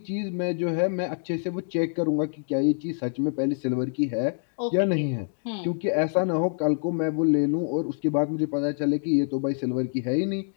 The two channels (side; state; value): right; silent; digital silence